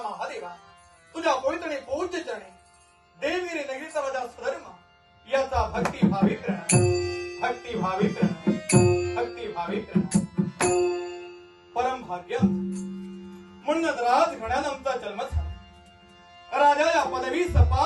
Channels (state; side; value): identical; both; correlation 1.00